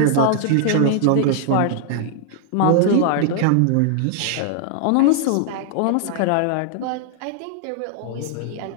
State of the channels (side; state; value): both; different; correlation -0.01